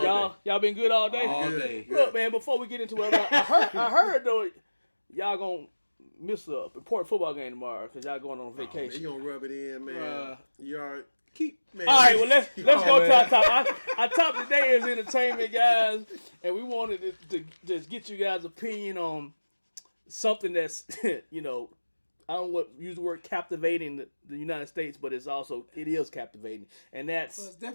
Y'all been good all day? All day. Look, man, before we get into it, I heard though, y'all gonna miss a important football game tomorrow because y'all going on vacation. You gonna rub it in, man. You are man. All right, well, let's go to our top. Our top today is entertainment, guys. And we wanted to just get you guys' opinion on something that's, I don't want to use the word captivating the United States, but it is captivating. And that's it's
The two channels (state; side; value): inverted; both; correlation -1.00